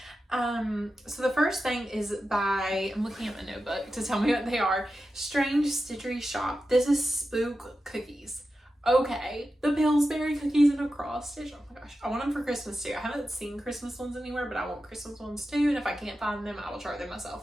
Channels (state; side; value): normal; both; correlation 0.91